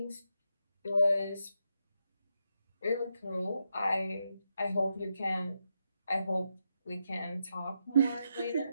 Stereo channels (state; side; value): inverted; both; correlation -0.83